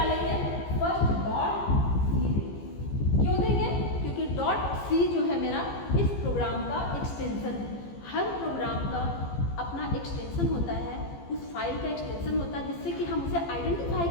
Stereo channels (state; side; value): late; right; 15 ms